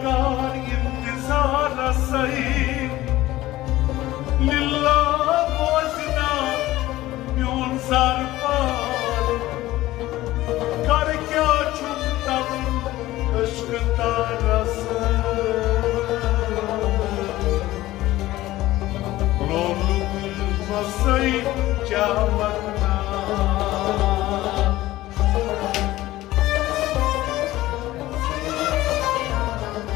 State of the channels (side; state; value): right; quieter; 16.5 dB